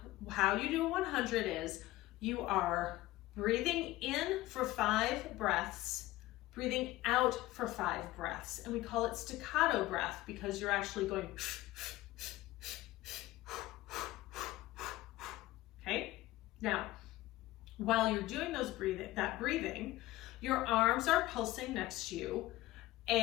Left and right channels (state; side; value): quieter; right; 17.3 dB